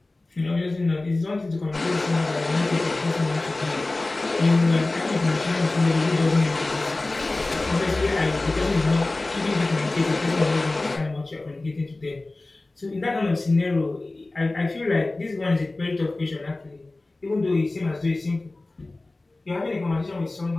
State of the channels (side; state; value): right; quieter; 3.0 dB